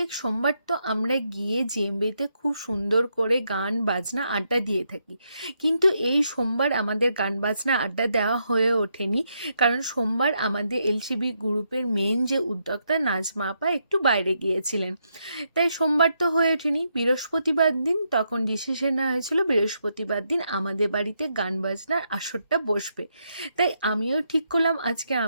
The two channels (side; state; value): both; inverted; correlation -0.80